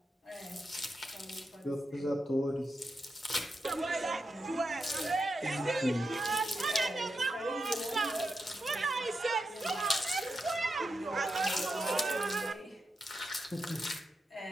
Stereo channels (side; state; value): both; normal; correlation 0.87